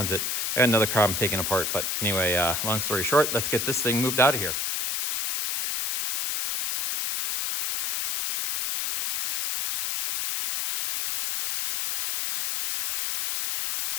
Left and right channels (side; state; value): left; noise; hiss, 1 dB below the sound